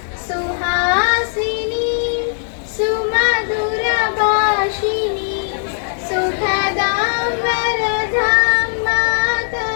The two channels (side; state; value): right; silent; digital silence